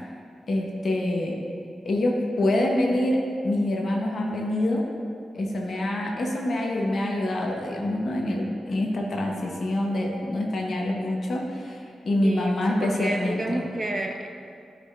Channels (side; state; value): both; normal; correlation 0.91